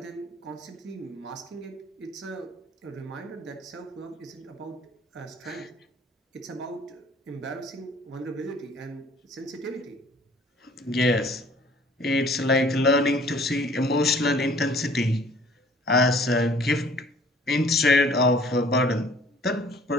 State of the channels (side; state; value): both; normal; correlation 0.54